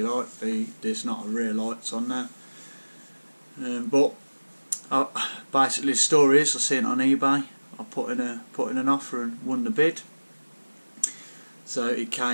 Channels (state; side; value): inverted; both; correlation -1.00